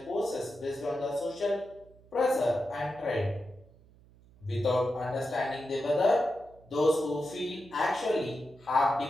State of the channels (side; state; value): right; noise; hum, 26 dB below the sound